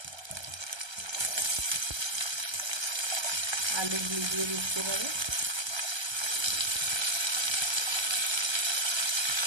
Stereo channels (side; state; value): left; late; 1.3 ms